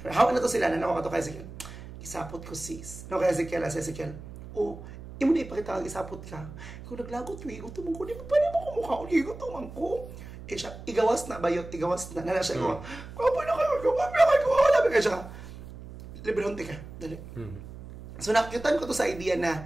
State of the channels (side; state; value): right; noise; hum, 14 dB below the sound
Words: Hawa na to sila. Nanawa ka to kay sige. Isapot ko sis. No, kaya Ezekiel. Imo na ipakita ang isapot ka. Kung naglagot, igutom ko, di ba pa naman kumukha ko, igutom ko. Siya, igawas na. Nala siya ko, kapoy na kayo, wala ba kayo siya. Librehonti ka, dali. So, nakikitan ko to sa idea